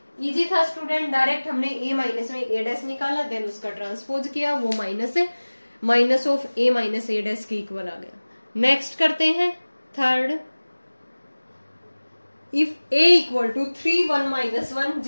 इजी था स्टूडेंट, डायरेक्ट हमने a माइनस में a डैश निकाला, देन उसका ट्रांसपोज किया, वो माइनस है, minus of a minus a dash के इक्वल आ गया। नेक्स्ट करते हैं third, if a equal to 3 1 minus 1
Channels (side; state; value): both; inverted; correlation -1.00